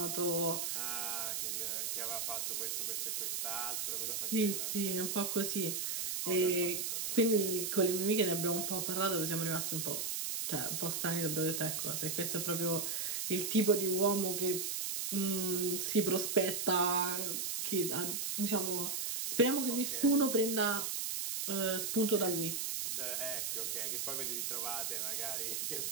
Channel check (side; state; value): right; noise; hiss, 1 dB below the sound